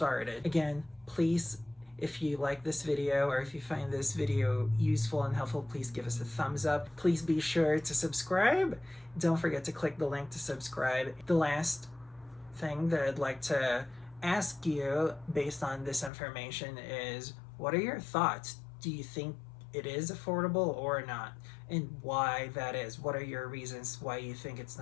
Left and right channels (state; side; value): drops out; right; at 16.1 s